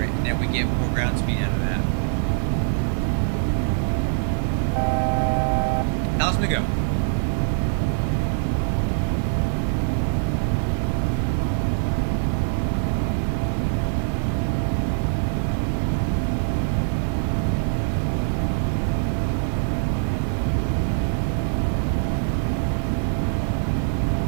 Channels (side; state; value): left; silent; digital silence